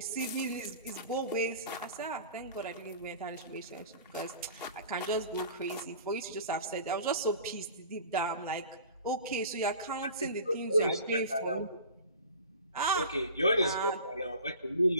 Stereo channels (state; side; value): inverted; both; correlation -0.41